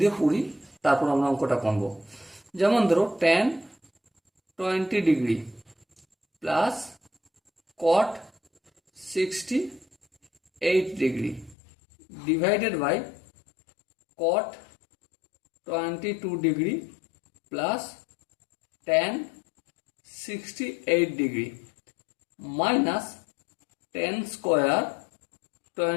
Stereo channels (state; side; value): drops out; right; at 11.6 s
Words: দিয়ে পড়ি, তারপর আমরা অঙ্কটা করবো। যেমন ধরো tan 20 degree plus cot 68 degree divided by cot 22 degree plus tan 68 degree minus tan square